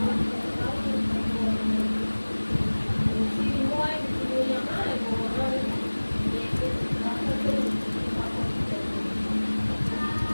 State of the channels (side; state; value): both; inverted; correlation -1.00